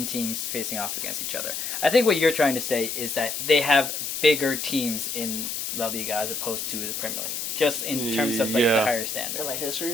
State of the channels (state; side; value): noise; left; hiss, 4 dB below the sound